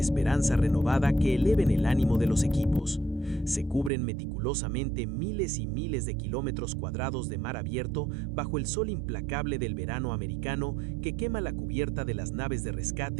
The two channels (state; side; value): drops out; left; at 3.9 s